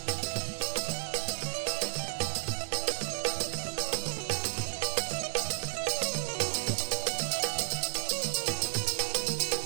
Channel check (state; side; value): silent; left; digital silence